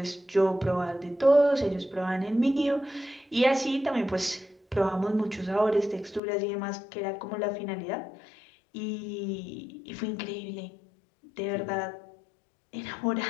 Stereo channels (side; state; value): right; drops out; at 6.2 s